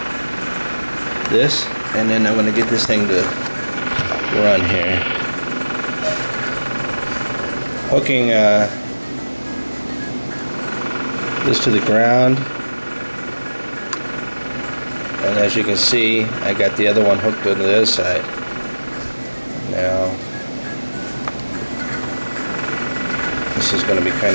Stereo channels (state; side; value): inverted; both; correlation -1.00